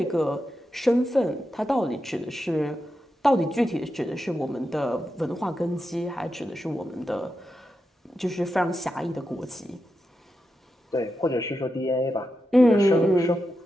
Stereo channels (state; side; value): normal; both; correlation 0.88